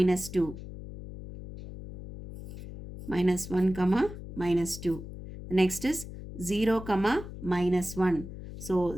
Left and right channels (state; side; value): noise; left; hum, 12 dB below the sound